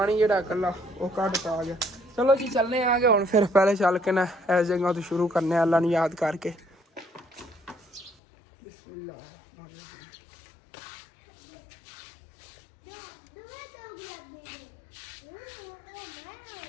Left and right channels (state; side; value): drops out; right; at 8.2 s